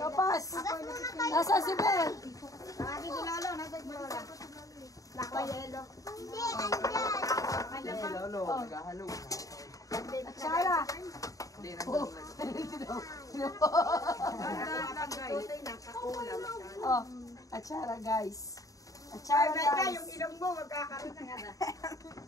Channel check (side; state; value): right; late; 0.17 ms